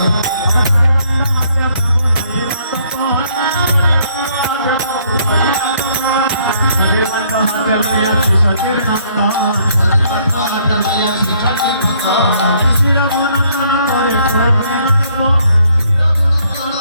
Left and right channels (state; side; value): inverted; both; correlation -0.66